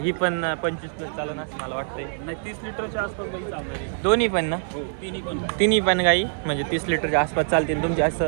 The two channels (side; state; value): left; silent; 62 dB below the other